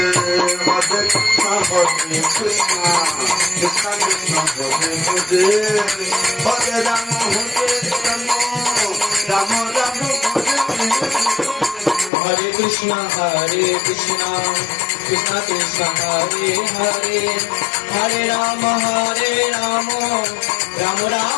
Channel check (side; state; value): right; drops out; at 12.1 s